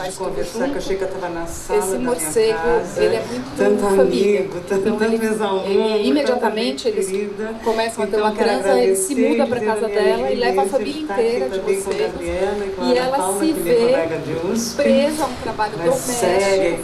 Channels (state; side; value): identical; both; correlation 1.00